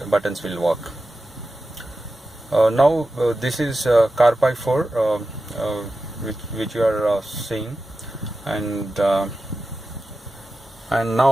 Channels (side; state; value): both; normal; correlation 0.92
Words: buttons will work. Now this is CarPi4 which you are seeing, and